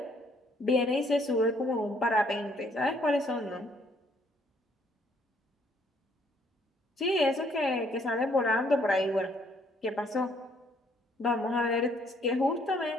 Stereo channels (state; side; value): normal; both; correlation 0.66